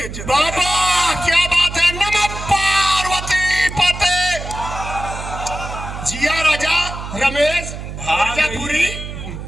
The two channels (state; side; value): noise; right; hum, 9 dB below the sound